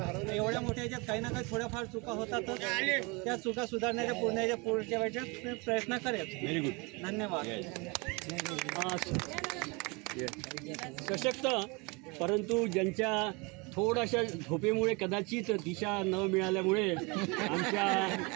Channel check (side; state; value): left; quieter; 28.3 dB